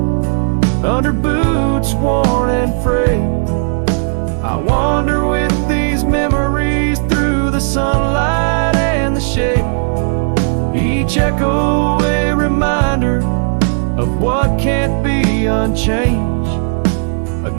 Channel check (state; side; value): silent; left; digital silence